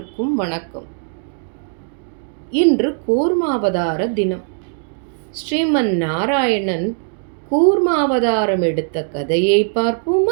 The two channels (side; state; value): left; silent; digital silence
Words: வணக்கம். இன்று கூர்மாவதார தினம். ஸ்ரீமன் நாராயணன் கூர்மாவதாரம் எடுத்த கதையை